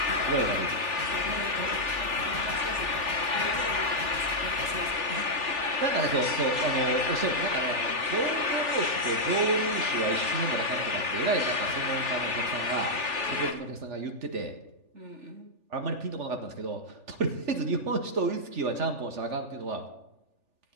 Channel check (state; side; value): late; left; 3.4 ms